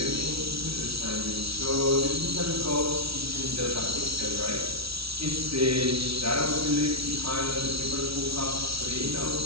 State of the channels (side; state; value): left; late; 0.76 ms